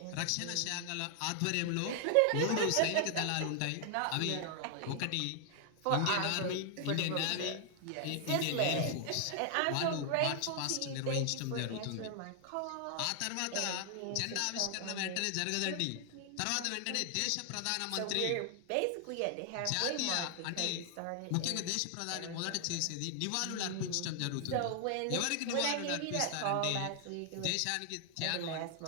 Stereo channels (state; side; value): different; both; correlation 0.00